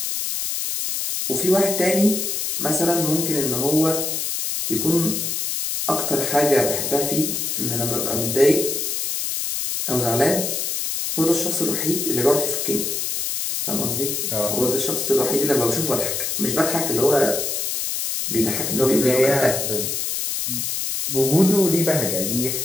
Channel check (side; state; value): left; noise; hiss, 1 dB below the sound